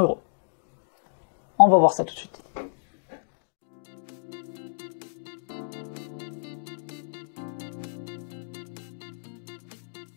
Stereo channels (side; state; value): right; silent; digital silence